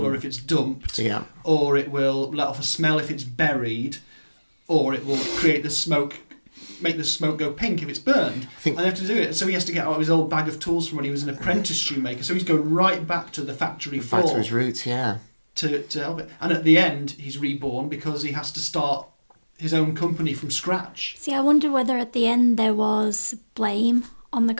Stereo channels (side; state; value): both; inverted; correlation -1.00